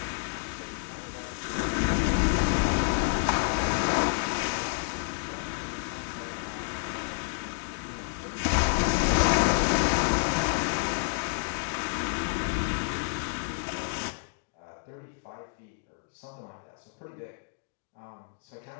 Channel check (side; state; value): right; silent; digital silence